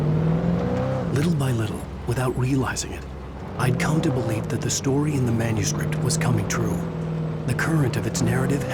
Little by little, without realizing it, I'd come to believe that the story in the manuscript was coming true. The current of its narrative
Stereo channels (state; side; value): identical; both; correlation 1.00